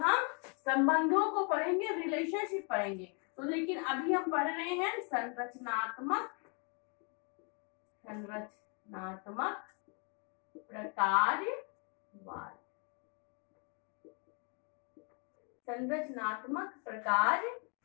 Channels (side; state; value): right; quieter; 36.9 dB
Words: हम संबंधों को पढ़ेंगे, रिलेशनशिप पढ़ेंगे। तो लेकिन अभी हम पढ़ रहे हैं संरचनात्मक प्रकार्यवाद। संरचनात्मक प्रकार्य,